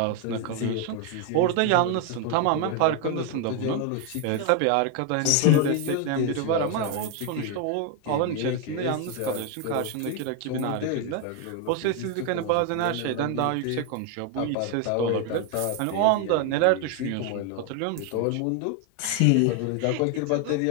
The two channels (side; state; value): both; different; correlation 0.01